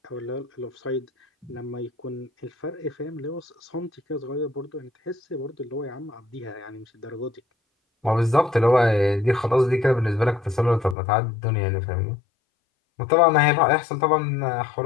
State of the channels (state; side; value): drops out; right; at 11.0 s